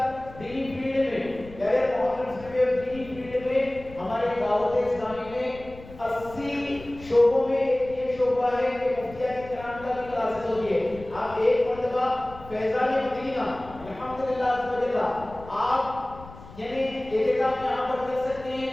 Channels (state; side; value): noise; left; rumble, 18 dB below the sound